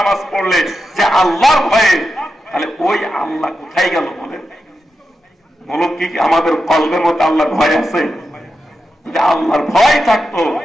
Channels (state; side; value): normal; both; correlation 0.89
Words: পড়লে যে আল্লাহর ভয়ে, তাহলে ওই আল্লাহ কোথায় গেল? বলেন, বলো কি আমাদের কলবের মধ্যে আল্লাহর ভয় আছে? যদি আল্লাহর ভয় থাকতো